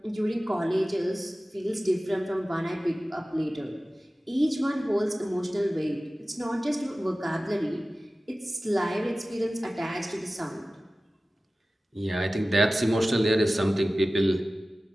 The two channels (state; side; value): normal; both; correlation 0.96